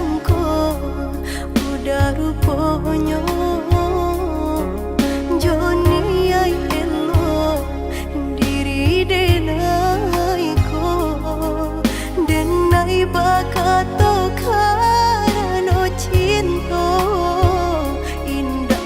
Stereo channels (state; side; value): identical; both; correlation 1.00